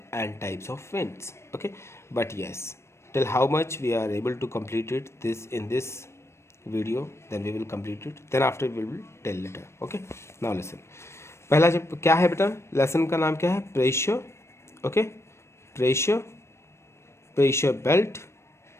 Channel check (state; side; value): late; right; 0.13 ms